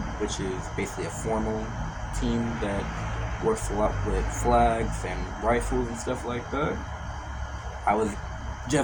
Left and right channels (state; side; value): identical; both; correlation 1.00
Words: which is basically a formal team that works a lot with flags and rifles and stuff like that. I was